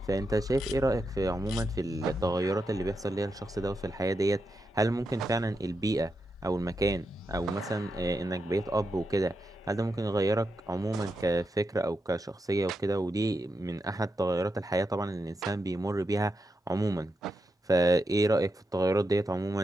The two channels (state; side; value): normal; both; correlation 0.86